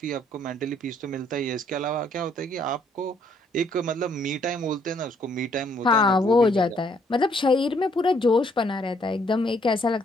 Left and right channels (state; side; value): normal; both; correlation 0.67